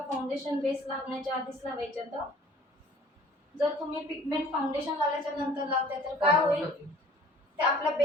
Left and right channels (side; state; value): both; normal; correlation 0.50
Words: फाउंडेशन बेस लागण्याच्या आधीच लावायचे. तर जर तुम्ही पिगमेंट फाउंडेशन लावल्याच्या नंतर लावताय तर काय होईल, ते आपल्या